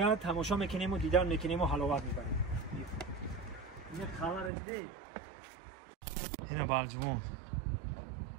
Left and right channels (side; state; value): left; drops out; at 4.5 s